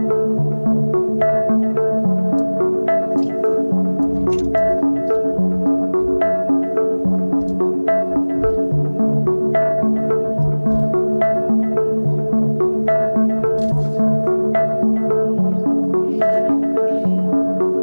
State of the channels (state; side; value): inverted; both; correlation -1.00